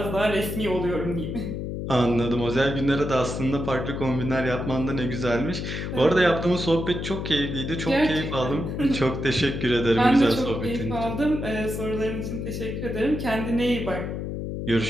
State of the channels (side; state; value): left; noise; hum, 4 dB below the sound